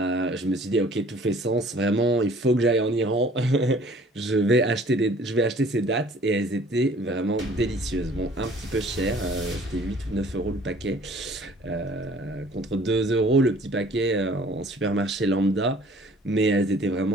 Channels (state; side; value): normal; both; correlation 0.53